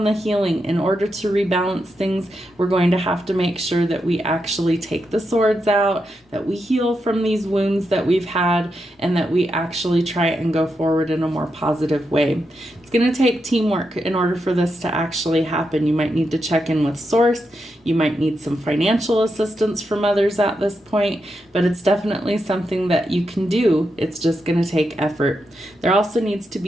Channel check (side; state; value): both; normal; correlation 0.85